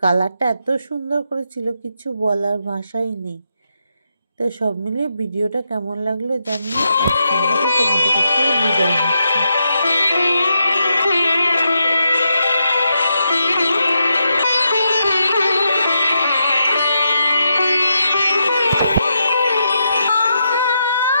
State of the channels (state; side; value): inverted; both; correlation -0.83